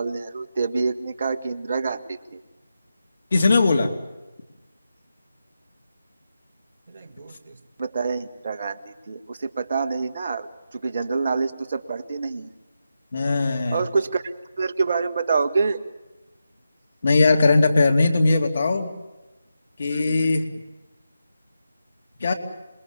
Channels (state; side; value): inverted; both; correlation -0.87